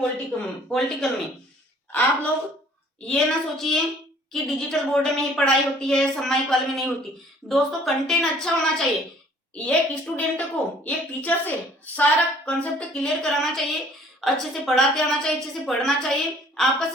पॉलिटिकल में। आप लोग ये ना सोचिए कि डिजिटल बोर्ड में ही पढ़ाई होती है, सामायिक वाले में नहीं होती। दोस्तों, कंटेंट अच्छा होना चाहिए। एक स्टूडेंट को एक टीचर से सारा कंसेप्ट क्लियर कराना चाहिए, अच्छे से पढ़ाते आना चाहिए, अच्छे से पढ़ना चाहिए, आपका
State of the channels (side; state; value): both; normal; correlation 0.55